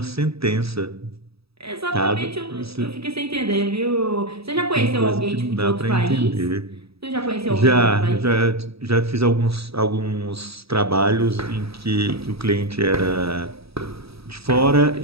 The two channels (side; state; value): left; late; 0.77 ms